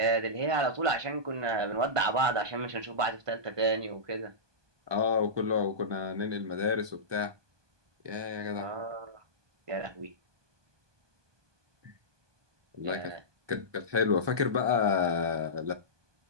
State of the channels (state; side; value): late; left; 1.2 ms